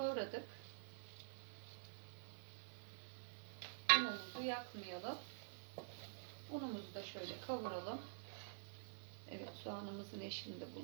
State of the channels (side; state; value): left; silent; digital silence